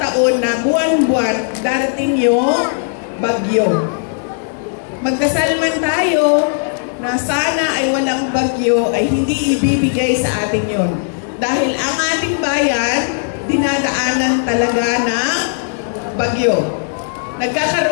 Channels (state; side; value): silent; right; digital silence